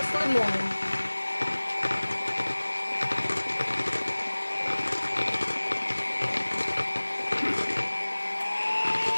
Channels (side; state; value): both; inverted; correlation -1.00